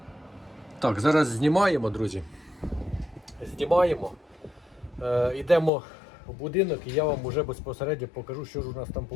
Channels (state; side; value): drops out; right; at 5.7 s